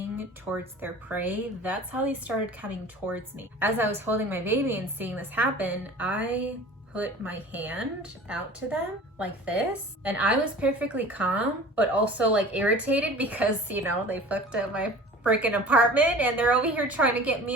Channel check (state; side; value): normal; both; correlation 0.42